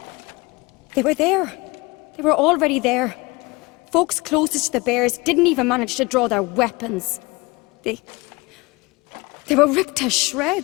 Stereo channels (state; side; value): quieter; right; 24.3 dB